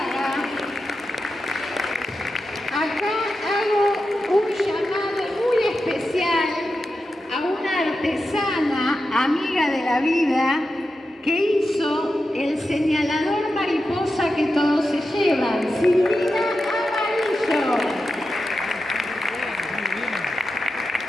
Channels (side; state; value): both; normal; correlation 0.90